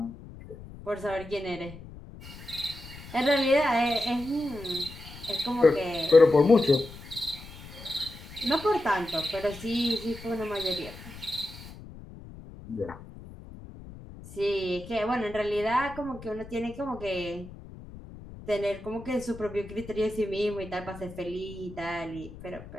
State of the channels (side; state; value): left; noise; rumble, 15 dB below the sound